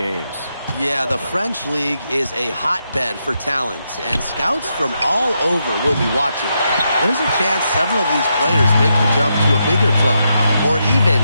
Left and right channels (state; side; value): inverted; both; correlation -0.83